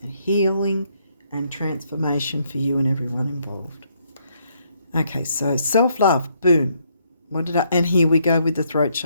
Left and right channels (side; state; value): both; inverted; correlation -0.72